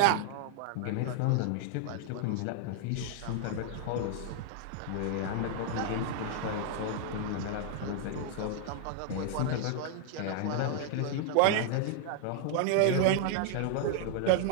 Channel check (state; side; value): different; both; correlation 0.00